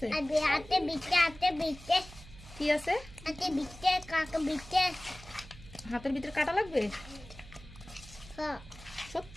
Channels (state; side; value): noise; right; hum, 17 dB below the sound